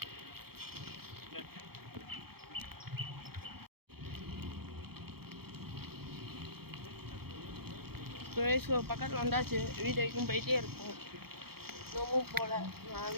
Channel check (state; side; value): late; left; 0.95 ms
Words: ஸோ பக்கத்தில் வந்தாச்சு. வீடியோக்கும் போயிட்டே இருக்கும். இன்னமும் போகல. நான்